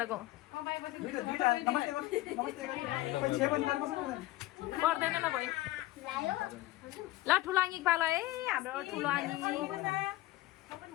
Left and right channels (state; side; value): quieter; right; 17.3 dB